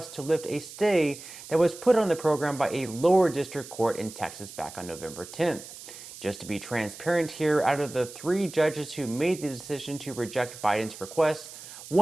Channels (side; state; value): right; noise; hiss, 15 dB below the sound